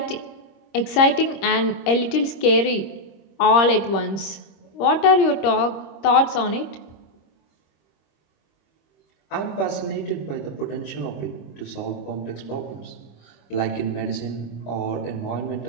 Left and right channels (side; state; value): right; late; 26 ms